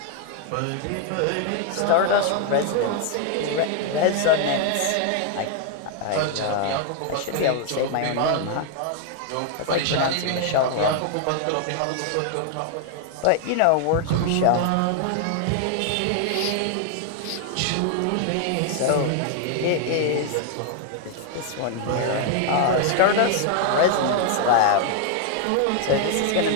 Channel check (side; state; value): both; different; correlation 0.00